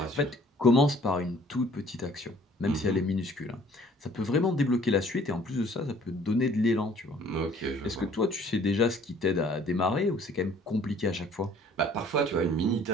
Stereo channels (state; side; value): normal; both; correlation 0.56